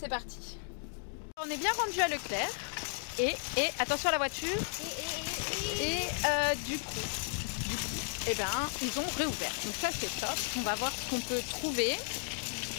parti. On est bien rendu à Leclerc. Et attention à la voiture. Et du coup, eh ben, ils ont réouvert. Donc ça, c'est top. On va voir ce qu'on peut trouver.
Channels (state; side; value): silent; right; 55 dB below the other